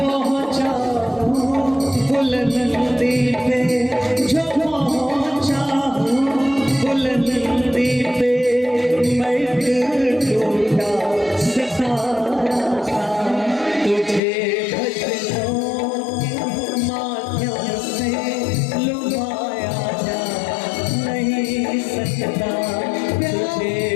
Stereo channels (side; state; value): right; drops out; at 14.2 s